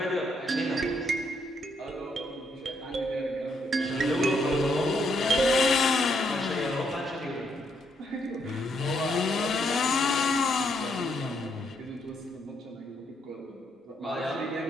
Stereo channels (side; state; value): both; normal; correlation 0.74